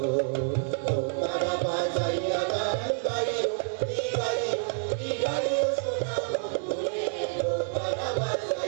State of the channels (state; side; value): silent; left; 59 dB below the other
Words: তারা বাজাইয়া গান গাইও গাইও গাইও সোনা বন্ধুরে তারা